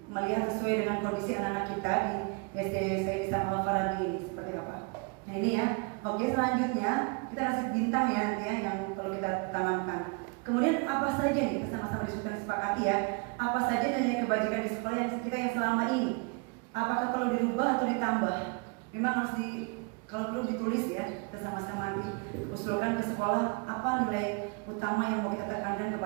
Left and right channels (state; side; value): quieter; left; 31.8 dB